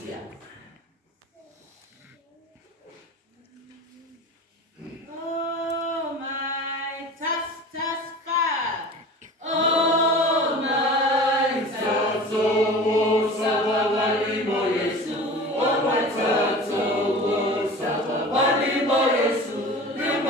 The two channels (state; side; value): normal; both; correlation 0.37